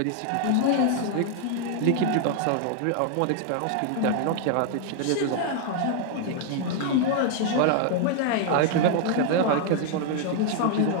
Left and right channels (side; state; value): both; different; correlation 0.00